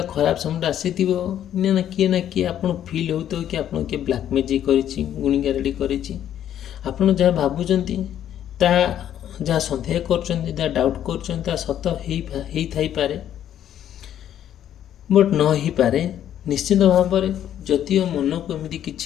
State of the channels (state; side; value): quieter; right; 10.7 dB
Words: ଖରାପ ସମୟଟା ଆସିଥିବ, ନା କିଏ ଆପଣ ଫିଲ୍ ହେଉଥିବ କି ଆପଣ କିଏ ବ୍ଲାକ୍ ମ୍ୟାଜିକ୍ କରିଛି, ଗୁଣିଗାରେଡ଼ି କରିଛି। ଆପଣ ଯାହା ଭାବୁଛନ୍ତି, ତାହା ଯାହା ସନ୍ଦେହ କରୁଛନ୍ତି, ଯାହା ଡାଉଟ୍ କରୁଛନ୍ତି, ତାହା ସତ ହେଇଥାଇପାରେ, ବଟ୍ ନ ହେଇପାରେ। ନିଶ୍ଚିତ ଭାବରେ ଯଦିଓ ମନକୁ ଏମିତି